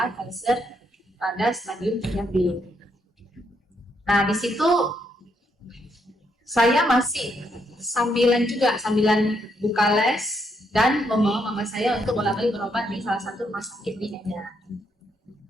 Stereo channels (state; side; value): normal; both; correlation 0.76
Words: kanker pada stadium 3B. Nah, di situ saya masih sambilan buka les dan membawa mama saya untuk bolak-balik berobat di salah satu rumah sakit di Medan.